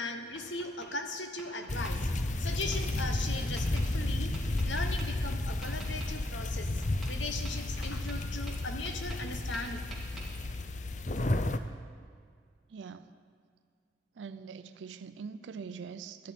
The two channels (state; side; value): normal; both; correlation 0.75